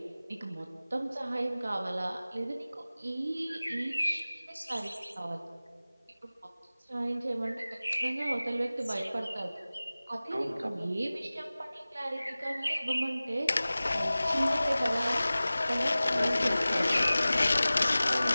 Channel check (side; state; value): both; inverted; correlation -0.98